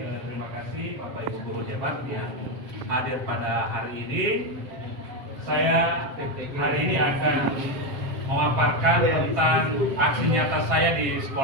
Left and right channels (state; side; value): late; left; 7.7 ms